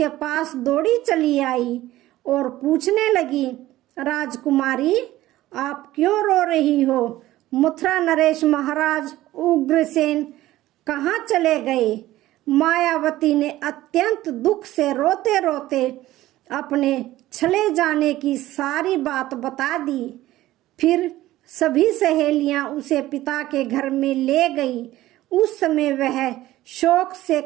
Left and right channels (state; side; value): quieter; left; 15.7 dB